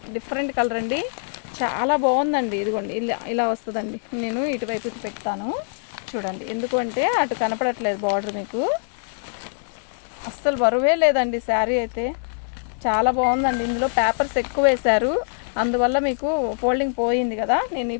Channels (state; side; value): silent; right; digital silence